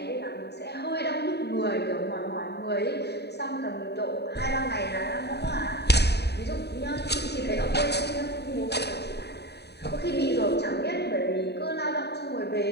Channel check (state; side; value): late; right; 0.48 ms